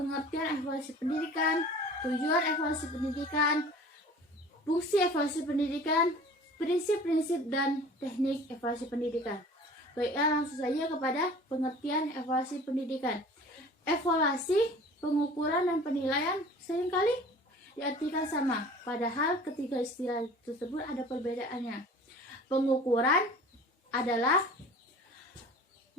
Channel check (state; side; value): normal; both; correlation 0.44